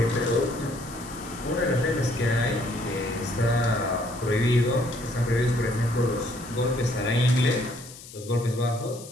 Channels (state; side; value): noise; left; hiss, 16 dB below the sound